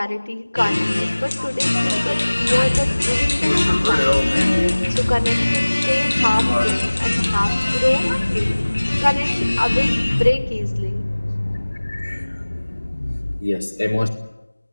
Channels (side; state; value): both; inverted; correlation -1.00